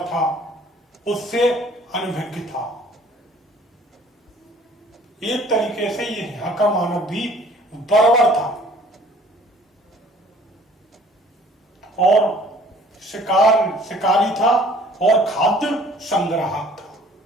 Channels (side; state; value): both; normal; correlation 0.54